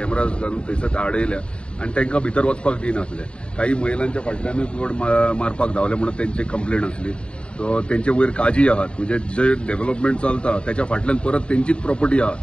घालून थंयसर आडयल्या आणि तांकां भितर वचपाक दिनासले काही महिलांच्या फाटल्यानूच बोर्ड मारपाक धांवले म्हणून तेंची कंप्लेंट आसली सो तेंचे वयर काजी आहात म्हणजे जे डेव्हलपमेंट चलता त्याच्या फाटल्यान परत तेंचीच प्रॉपर्टी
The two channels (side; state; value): right; late; 0.054 ms